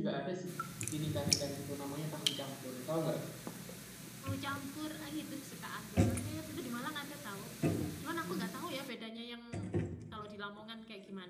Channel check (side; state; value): both; identical; correlation 1.00